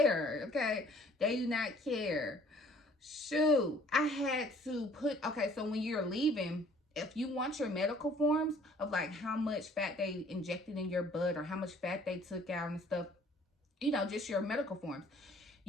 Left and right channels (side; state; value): both; normal; correlation 0.56